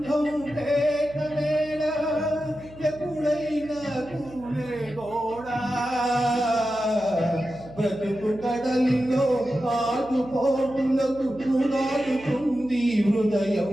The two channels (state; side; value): noise; right; hum, 19 dB below the sound